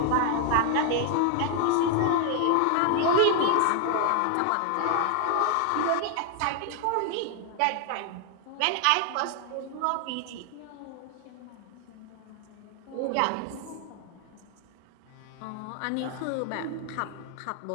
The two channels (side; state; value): both; different; correlation 0.00